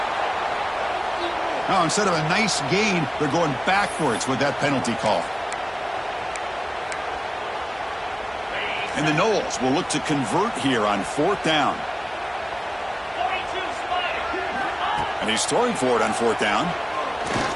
Now, instead of a nice gain, they're going backwards with that penalty call. And the Noles will look to convert here on fourth down. And he's throwing for it on fourth down.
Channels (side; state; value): both; identical; correlation 1.00